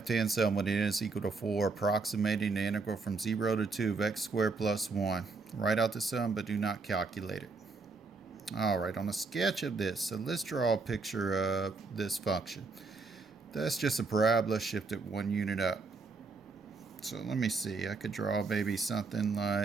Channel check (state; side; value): quieter; left; 4.1 dB